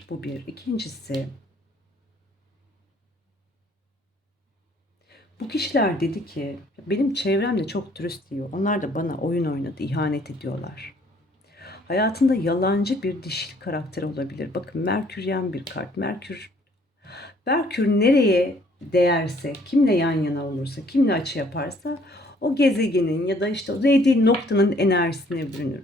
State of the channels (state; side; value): normal; both; correlation 0.61